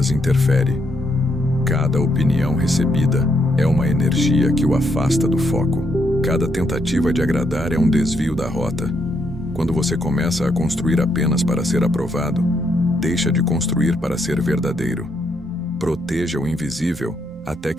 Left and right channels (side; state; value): both; normal; correlation 0.76